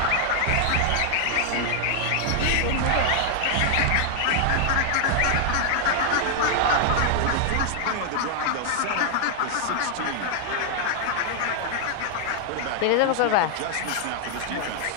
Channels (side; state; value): both; different; correlation -0.01